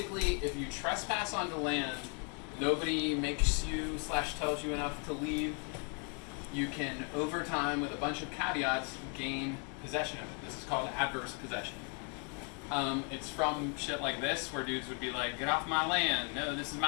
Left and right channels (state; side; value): quieter; right; 38.1 dB